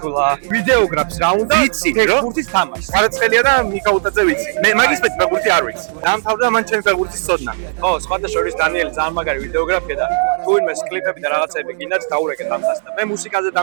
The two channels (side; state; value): left; silent; digital silence